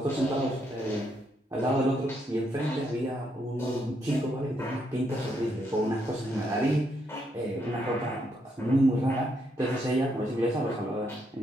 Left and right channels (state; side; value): normal; both; correlation 0.76